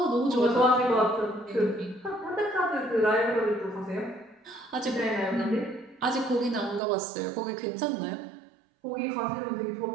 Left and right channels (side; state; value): left; drops out; at 6.8 s